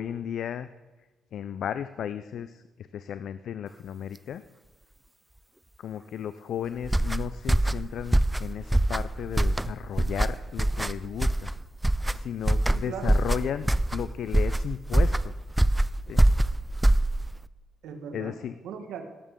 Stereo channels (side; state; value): both; normal; correlation 0.93